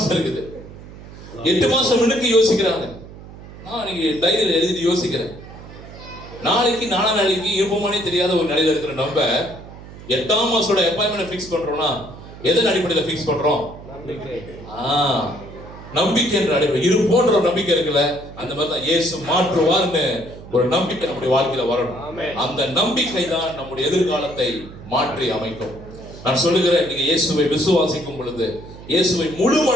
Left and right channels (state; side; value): noise; right; hum, 16 dB below the sound